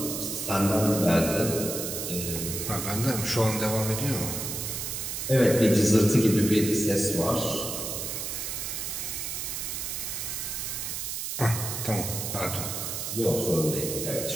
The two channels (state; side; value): noise; right; hiss, 4 dB below the sound